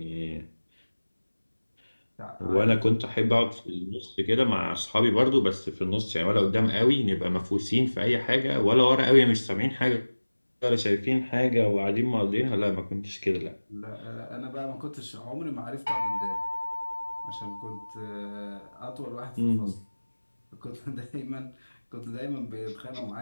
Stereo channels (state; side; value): inverted; both; correlation -1.00